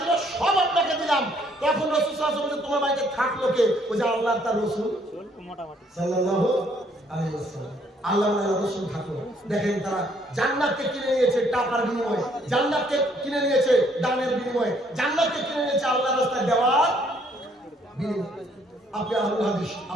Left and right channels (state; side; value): normal; both; correlation 0.66